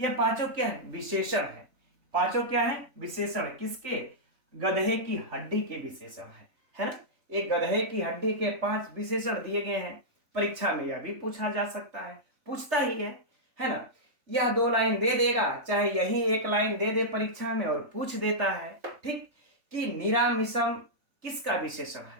पांचों क्या है, विशेषण है। पांचों क्या है, विशेषण, किसके, गधे की हड्डी के विशेषण है ना। एक गधे की हड्डी के 5 विशेषण दिए गए हैं। परीक्षा में यह भी पूछा जा सकता है, पूछता ही है ना। यह 2 लाइन दे देगा, चाहे यही 1 लाइन दे दे परीक्षा में और पूछ देता है। ठीक, कि निरामिषम किसका विशेषण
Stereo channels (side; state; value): left; late; 3.5 ms